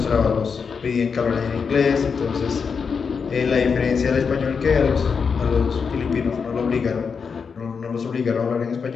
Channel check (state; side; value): quieter; right; 5.8 dB